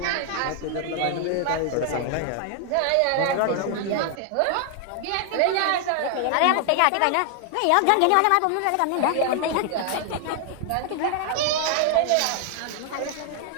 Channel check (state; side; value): different; both; correlation 0.00